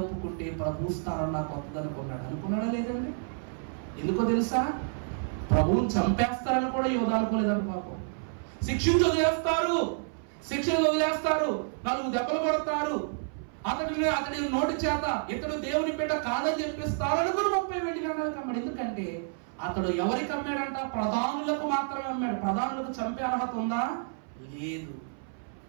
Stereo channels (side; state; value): left; silent; 58 dB below the other